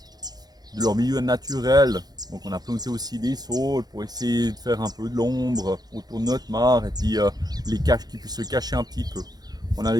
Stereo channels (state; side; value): late; left; 0.19 ms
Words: leur milieu naturel. Donc on a planté aussi des saules pour essayer de faire un peu de l'ombre autour de notre mare et puis les caches qui puissent se cacher un petit peu. On a